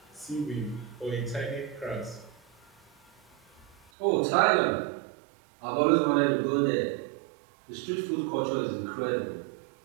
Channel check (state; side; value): drops out; left; at 3.8 s